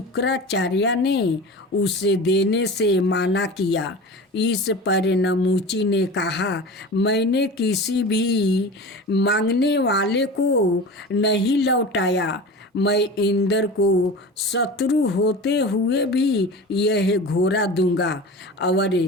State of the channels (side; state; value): both; normal; correlation 0.33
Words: ने उसे देने से मना किया। इस पर नमूची ने कहा, मैंने किसी भी मांगने वाले को नहीं लौटाया। मैं इंद्र को शत्रु होते हुए भी यह घोड़ा दूंगा और